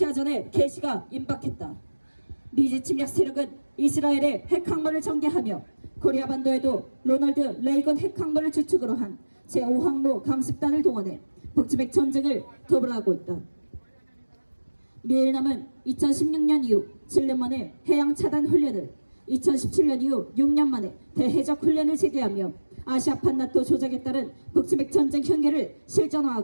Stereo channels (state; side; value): inverted; both; correlation -1.00